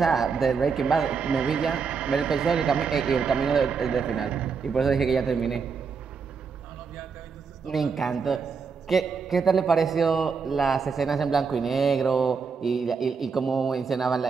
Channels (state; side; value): quieter; left; 5.5 dB